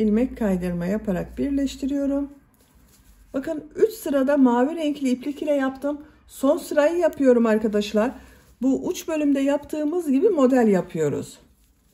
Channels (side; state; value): both; identical; correlation 1.00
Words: kaydırma yaparak birleştiriyorum. Bakın 3 sırada mavi renkli iplik ile yaptım. Son sırayı yapıyorum arkadaşlar. Bu uç bölümde yaptığımız gibi model yapıyoruz.